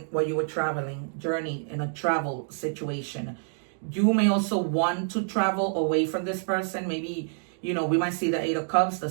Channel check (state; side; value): silent; left; digital silence